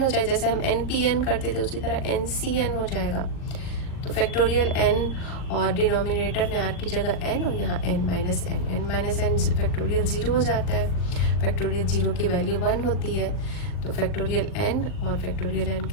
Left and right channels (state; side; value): late; right; 40 ms